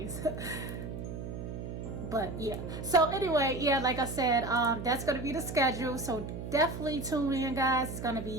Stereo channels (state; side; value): noise; right; hum, 7 dB below the sound